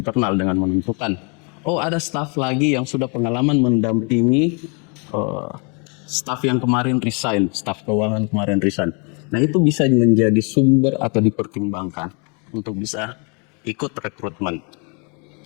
dengan menentukan, oh ada staf lagi yang sudah pengalaman mendampingi staf yang kemarin resign, staf keuangan kemarin resign. Nah itu bisa menjadi sumber atau dipertimbangkan untuk bisa ikut rekrutmen.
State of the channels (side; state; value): right; quieter; 34.6 dB